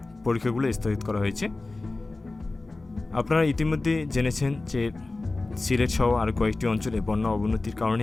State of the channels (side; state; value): right; quieter; 3.2 dB